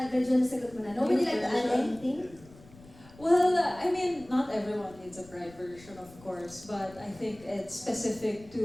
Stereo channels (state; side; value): noise; left; rumble, 22 dB below the sound